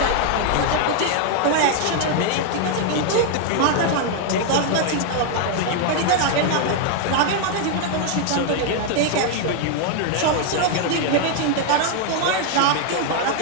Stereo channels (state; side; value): different; both; correlation 0.00